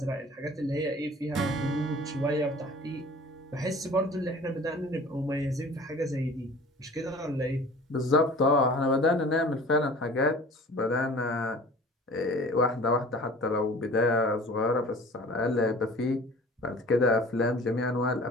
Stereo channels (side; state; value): both; normal; correlation 0.44